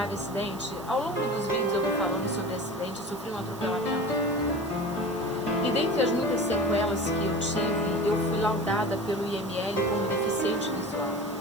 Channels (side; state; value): right; noise; hiss, 19 dB below the sound